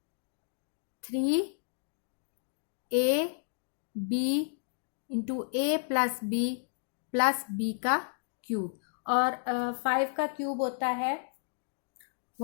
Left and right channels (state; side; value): silent; right; digital silence